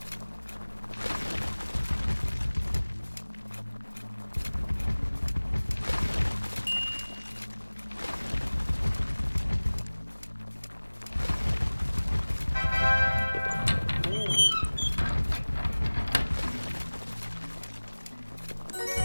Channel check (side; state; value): both; inverted; correlation -1.00